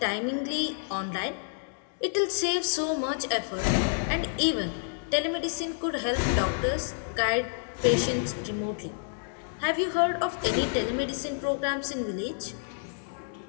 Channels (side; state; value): right; silent; digital silence